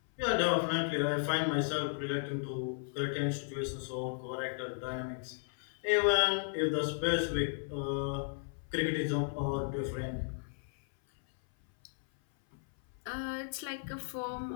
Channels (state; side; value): silent; right; 55 dB below the other